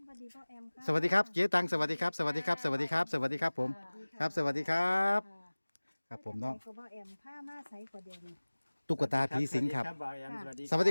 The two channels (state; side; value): inverted; both; correlation -1.00